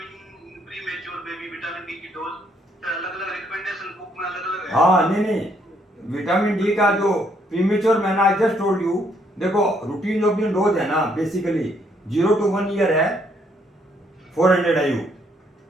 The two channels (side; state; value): both; normal; correlation 0.70